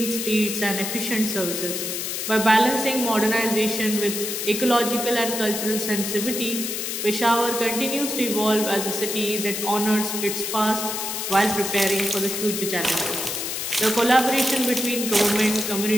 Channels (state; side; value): noise; left; hiss, 3 dB below the sound